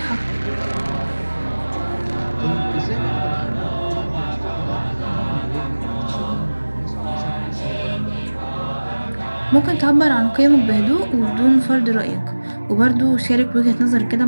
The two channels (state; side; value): inverted; both; correlation -1.00